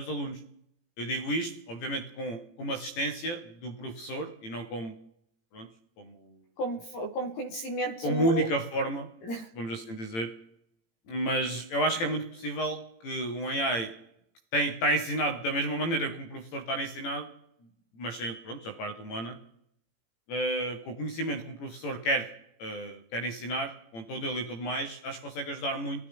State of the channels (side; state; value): right; late; 18 ms